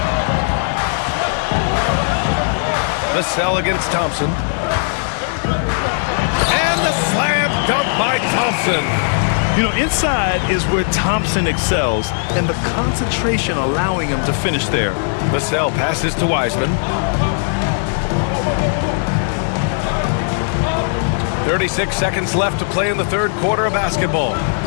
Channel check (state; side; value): silent; right; 58 dB below the other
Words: Vassell against Thompson. And the slam dunk by Thompson. You know, inside is where Thompson excels, and the concentration allowing him to finish there. Vassell passes to Wiseman. 36 seconds left to play in the third quarter of basketball.